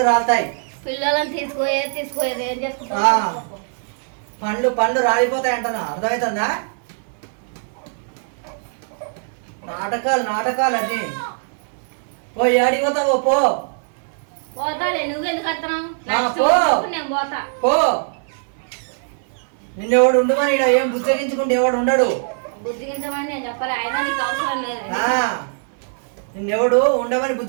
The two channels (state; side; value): silent; left; 63 dB below the other